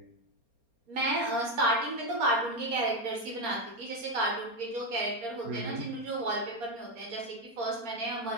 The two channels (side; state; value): left; late; 4.3 ms